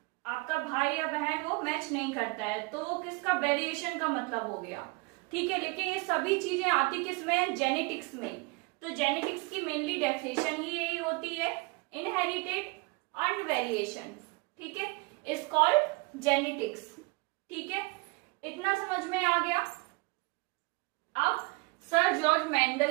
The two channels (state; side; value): quieter; left; 27.5 dB